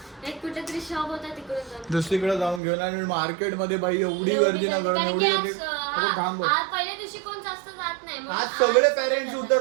एक कुठेतरी शॉप होता तिकडून जाऊ. दुसरीकडे जाऊन घेऊन आणि मार्केट मध्ये बाई एवढी एवढी गर्दी ना, कारण एवढी की गर्दी. आज, थांब बघ. आज पहिल्या दिवशी कोण जास्त जात नाही म्हणून आज सगळे आज पॅरेंट्स सगळे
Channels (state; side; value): drops out; left; at 2.6 s